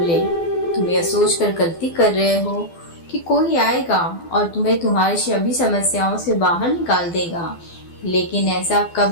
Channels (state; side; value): late; right; 12 ms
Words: तुम यह सोचकर गलती कर रहे हो कि कोई आएगा और तुम्हें तुम्हारी सभी समस्याओं से बाहर निकाल देगा, लेकिन ऐसा